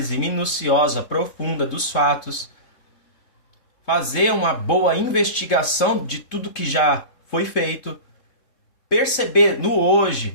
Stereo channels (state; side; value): late; right; 3.6 ms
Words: minuciosa, profunda dos fatos, fazer uma boa investigação de tudo que já foi feito, perceber no